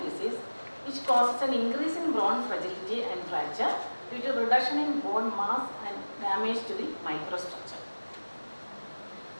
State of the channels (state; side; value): inverted; both; correlation -1.00